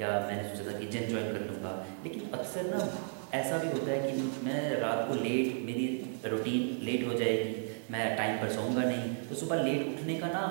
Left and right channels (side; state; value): left; silent; digital silence